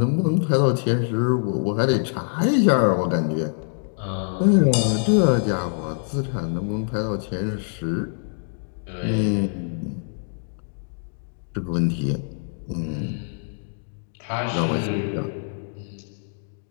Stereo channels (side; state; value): right; silent; 62 dB below the other